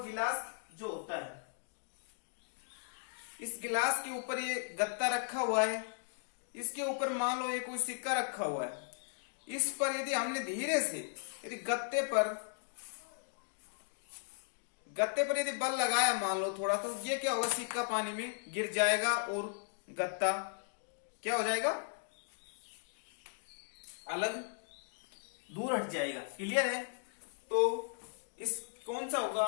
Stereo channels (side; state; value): right; silent; digital silence